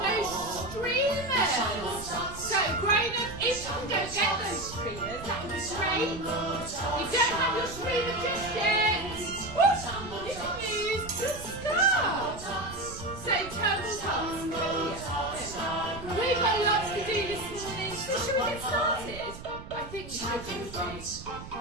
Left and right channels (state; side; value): noise; right; rumble, 13 dB below the sound